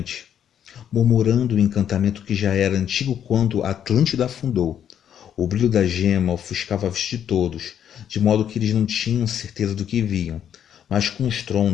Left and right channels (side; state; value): right; quieter; 9.3 dB